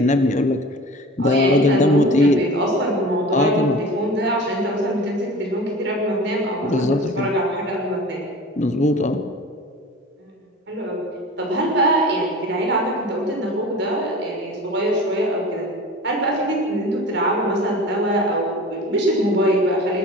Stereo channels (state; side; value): normal; both; correlation 0.38